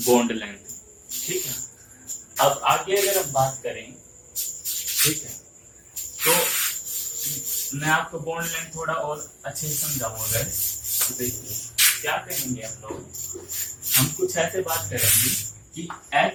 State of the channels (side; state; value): both; identical; correlation 1.00